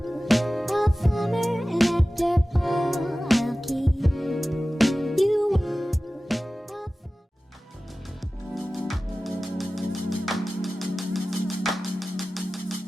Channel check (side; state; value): both; normal; correlation 0.96